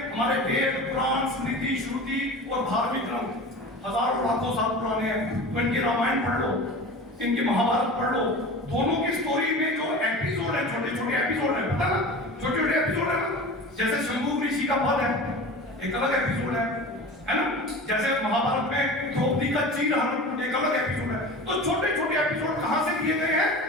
हमारे वेद, पुराण, स्मृति, श्रुति और धार्मिक ग्रंथ हजारों लाखों साल पुराने हैं। तो इनकी रामायण पढ़ लो, इनकी महाभारत पढ़ लो, दोनों की स्टोरी में जो एपिसोड है, छोटे छोटे एपिसोड है, पता ना, छोटे छोटे एपिसोड है। जैसे शंभू ऋषि का वध है, एक अलग एपिसोड है ना। जैसे महाभारत में द्रौपदी का चीरहरण, एक अलग एपिसोड है। तो छोटे छोटे एपिसोड कहां से लिए गए हैं?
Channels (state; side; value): normal; both; correlation 0.34